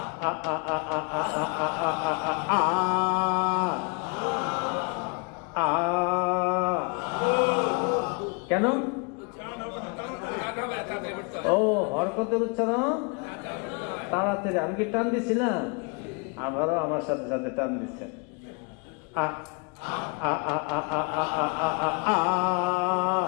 আ আ আ আ আ আ আ কেন ও হরকতের উচ্চারণ তাড়াতাড়ি আমি কি টান দিছিলাম আবারও আমার সাথে সাথে টান দিচ্ছে আ আ আ আ আ আ আ আ আ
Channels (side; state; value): right; quieter; 33.8 dB